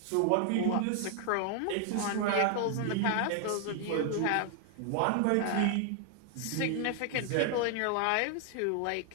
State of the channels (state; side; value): different; both; correlation 0.00